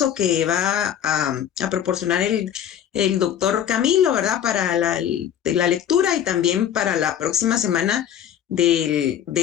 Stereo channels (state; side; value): quieter; right; 9.8 dB